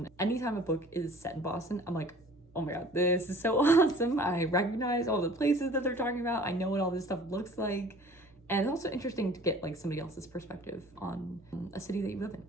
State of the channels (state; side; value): normal; both; correlation 0.48